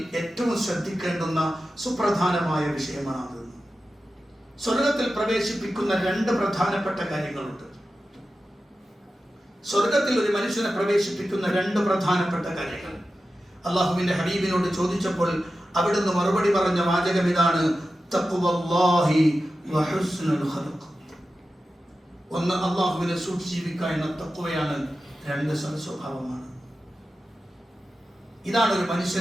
ഏറ്റവും ശ്രദ്ധിക്കേണ്ടുന്ന സുപ്രധാനമായ വിഷയമാണത്. സ്വർഗത്തിൽ പ്രവേശിപ്പിക്കുന്ന രണ്ട് പ്രധാനപ്പെട്ട കാര്യങ്ങളുണ്ട്. സ്വർഗത്തിൽ ഒരു മനുഷ്യനെ പ്രവേശിപ്പിക്കുന്ന രണ്ട് പ്രധാനപ്പെട്ട കാര്യങ്ങൾ അള്ളാഹുവിന്റെ ഹബീബിനോട് ചോദിച്ചപ്പോൾ അവിടുന്ന് മറുപടി പറഞ്ഞ വാചകം ഇതാണ്, തഖ്വല്ലാഹി വ ഹുസ്നുൽ ഖൽഖ്. ഒന്ന് അള്ളാഹുവിനെ സൂക്ഷിച്ച് ജീവിക്കുക എന്ന തഖ്വയാണ്, രണ്ട് സൽസ്വഭാവമാണ്. ഇതാണ് ഒരു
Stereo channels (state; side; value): normal; both; correlation 0.93